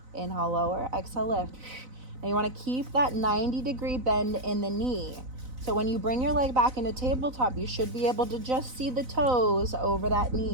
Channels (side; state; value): left; late; 4.0 ms